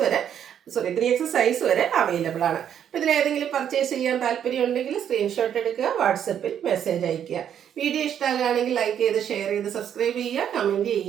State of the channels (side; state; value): left; quieter; 9.3 dB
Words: വരെ 3XL സൈസ് വരെ അവൈലബിൾ ആണ്. അപ്പോൾ ഇതിലേതെങ്കിലും പർച്ചേസ് ചെയ്യാൻ താല്പര്യം ഉണ്ടെങ്കിൽ സ്ക്രീൻഷോട്ട് എടുക്കുക, വാട്സപ്പിൽ മെസ്സേജ് അയയ്ക്കുക. വീഡിയോ ഇഷ്ടമാകുകയാണെങ്കിൽ ലൈക്ക് ചെയ്ത് ഷെയർ ചെയ്ത് സബ്സ്ക്രൈബ് ചെയ്യുക, കമൻറ്റ്